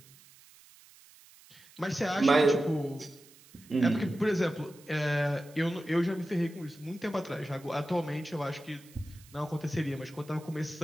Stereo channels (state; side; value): noise; right; hiss, 24 dB below the sound